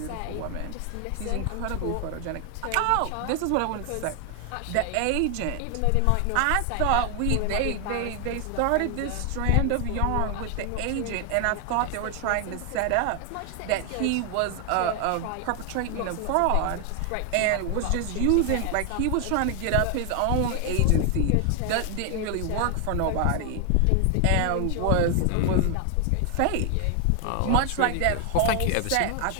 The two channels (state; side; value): different; both; correlation 0.00